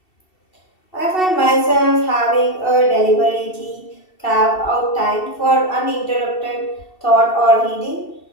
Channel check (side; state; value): right; late; 2.7 ms